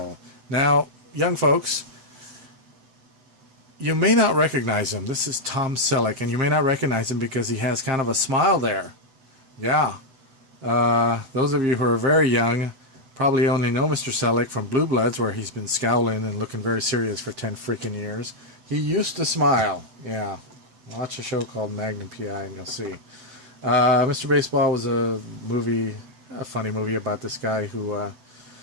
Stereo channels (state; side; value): late; left; 7.9 ms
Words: Now, young folks, you may not recognize him. This is Tom Selleck, and you may not recognize him because he has kind of a smile there. Yeah. Those of you who are very young probably only know Mr. Selleck from Blue Bloods, where he's been scowling and looking very serious for 10 freaking years. He used to smile. Yeah. Watch a show called Magnum P.I. and you'll see. Mr. Baseball was a funny movie about this guy who